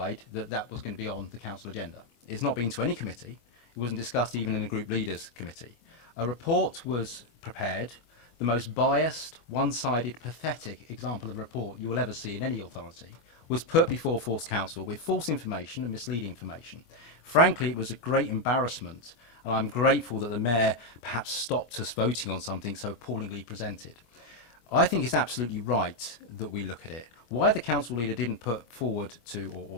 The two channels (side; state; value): right; late; 25 ms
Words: that that was going to be on the council agenda. It's not been to any committee. It wasn't discussed even in a group leaders committee. A report was prepared, the most biased, one-sided, pathetic example of a report you will ever see in any authority, was put before Force Council with false information and misleading information. Frankly, it was a great embarrassment, and I'm grateful that the Mayor perhaps stopped us voting on something so appallingly presented. I think it's absolutely right that we look at it. Why the council leader didn't put forward to,